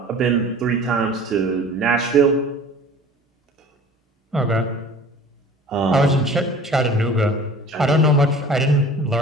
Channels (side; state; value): both; normal; correlation 0.44